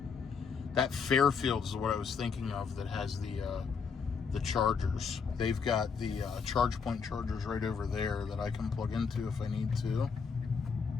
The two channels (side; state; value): right; quieter; 5.8 dB